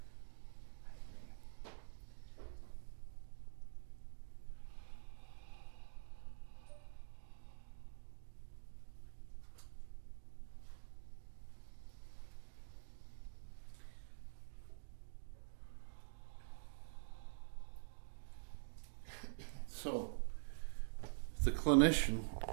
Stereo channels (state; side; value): silent; left; digital silence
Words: I agree. So, the clinician